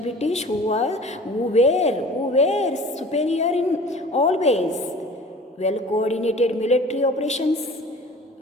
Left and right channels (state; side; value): normal; both; correlation 0.43